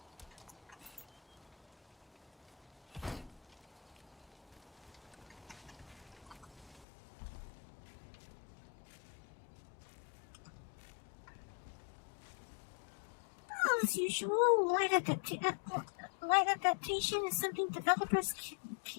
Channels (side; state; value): right; drops out; at 6.9 s